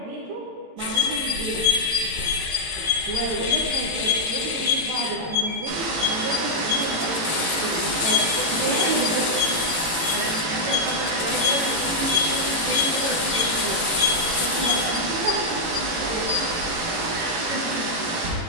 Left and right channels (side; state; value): left; late; 18 ms